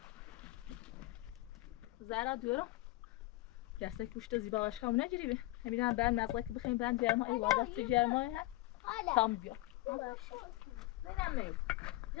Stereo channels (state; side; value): quieter; right; 18.8 dB